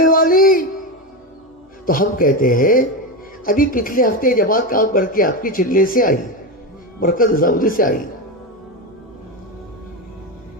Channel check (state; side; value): normal; both; correlation 0.15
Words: والی؟ تو ہم کہتے ہیں ابھی پچھلے ہفتے جماعت کام کر کے آپ کی چلنے سے آئی، مرکز نظام الدین سے آئی.